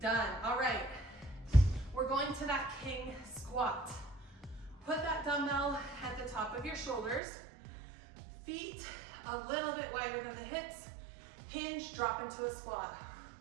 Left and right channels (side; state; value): left; drops out; at 7.2 s